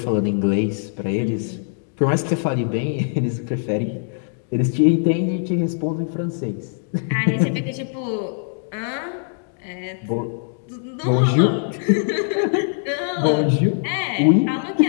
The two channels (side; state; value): right; silent; digital silence